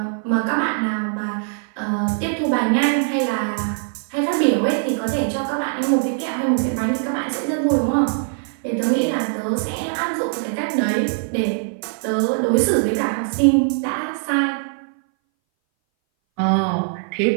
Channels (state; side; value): silent; left; 61 dB below the other